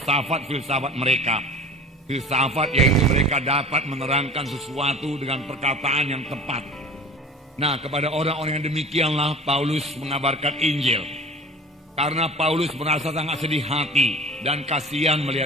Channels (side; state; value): both; normal; correlation 0.41